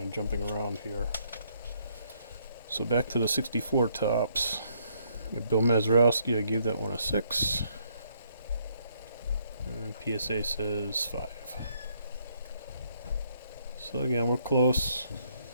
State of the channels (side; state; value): both; inverted; correlation -0.70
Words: of jumping around here. So back to the 64 tops. Bill Mazeroski, I gave that one a 6. And PSA says 5. So again, we're close.